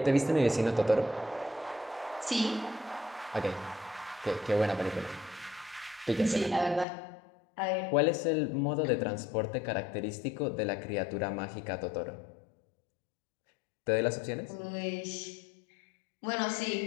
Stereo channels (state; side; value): drops out; right; at 6.9 s